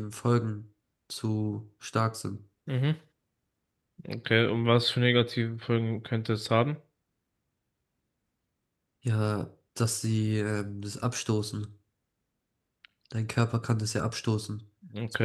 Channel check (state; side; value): identical; both; correlation 1.00